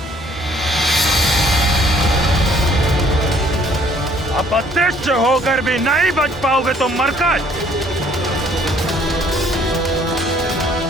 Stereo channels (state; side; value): normal; both; correlation 0.60